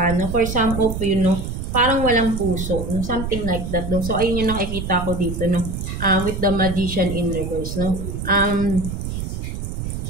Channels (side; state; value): right; noise; rumble, 5 dB below the sound